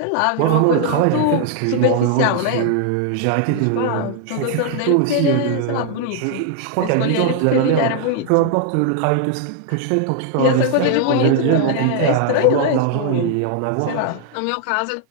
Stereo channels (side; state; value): both; different; correlation 0.00